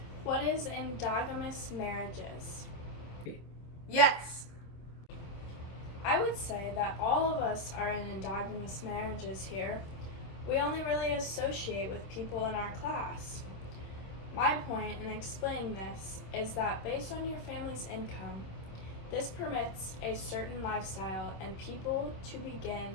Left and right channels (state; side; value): late; right; 26 ms